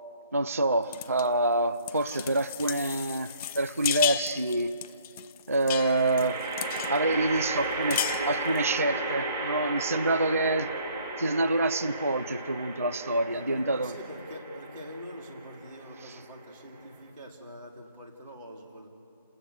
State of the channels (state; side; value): inverted; both; correlation -0.59